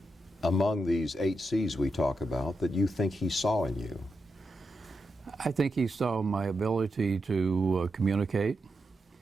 among these 8 C's we talk about that you think he saw in you? I think he saw my ability to communicate,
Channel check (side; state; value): both; normal; correlation 0.86